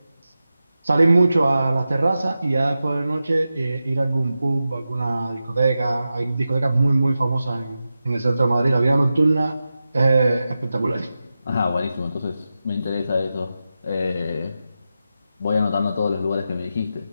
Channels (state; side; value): inverted; both; correlation -0.92